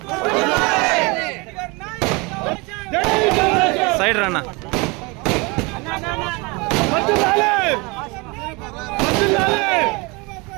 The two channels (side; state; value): left; quieter; 27.3 dB